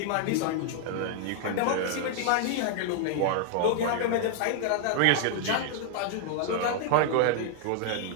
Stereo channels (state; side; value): different; both; correlation 0.00